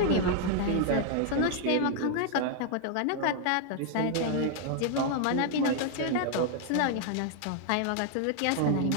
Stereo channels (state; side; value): different; both; correlation 0.00